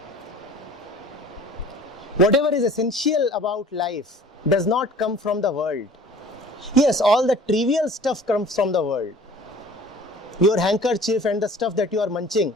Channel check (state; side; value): normal; both; correlation 0.47